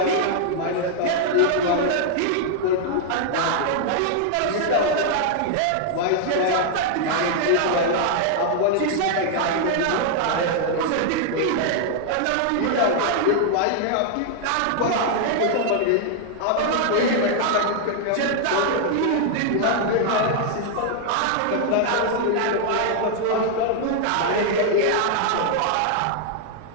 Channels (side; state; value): both; different; correlation 0.00